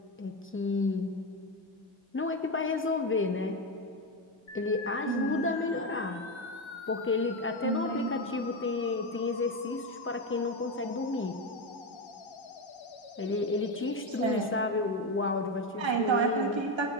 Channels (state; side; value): normal; both; correlation 0.12